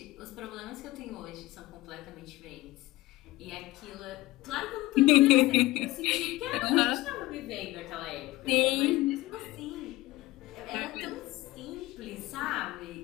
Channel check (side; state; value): right; quieter; 18.7 dB